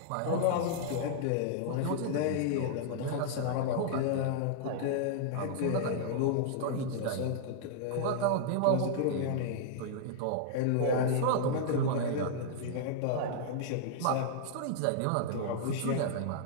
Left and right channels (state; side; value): different; both; correlation -0.01